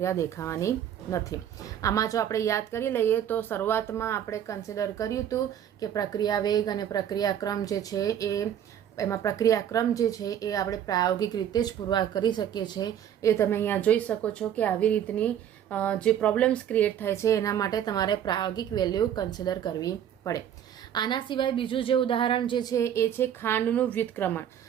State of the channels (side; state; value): left; quieter; 9.9 dB